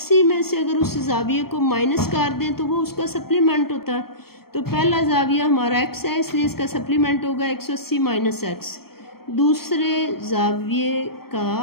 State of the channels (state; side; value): late; right; 0.95 ms